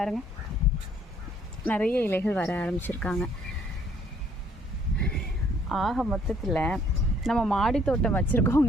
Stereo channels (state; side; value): normal; both; correlation 0.63